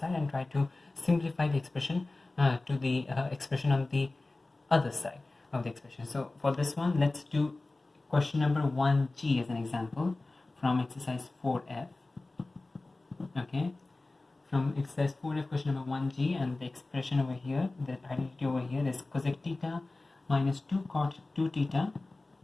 and try to simplify the expression to the expression on the other side of the expression. So for this one, let's do question number 1G as an example from exercise 4F. Okay, from exercise 4F, question number 1G, and the expression over here, the identity over here is cosec theta minus 2 cot 2 theta,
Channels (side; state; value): right; quieter; 3.1 dB